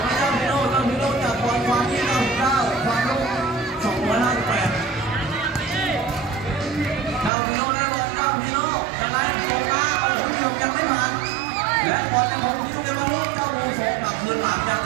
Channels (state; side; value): drops out; left; at 7.3 s